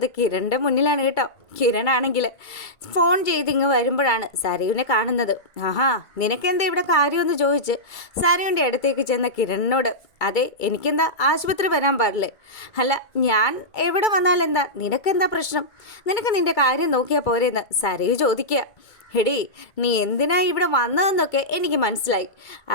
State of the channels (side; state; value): right; late; 2.3 ms